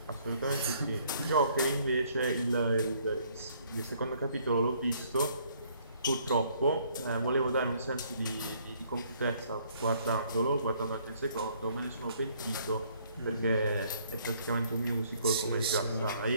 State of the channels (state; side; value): inverted; both; correlation -0.63